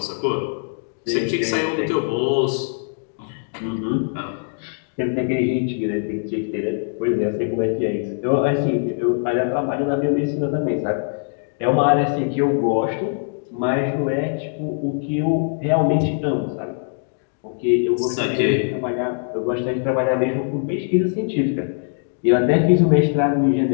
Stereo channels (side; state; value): right; silent; digital silence